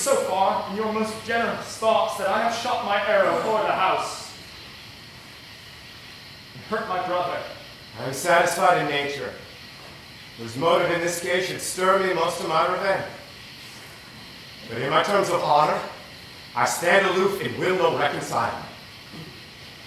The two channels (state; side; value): identical; both; correlation 1.00